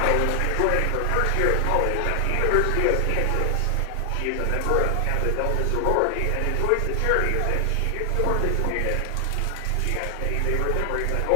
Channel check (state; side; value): different; both; correlation 0.00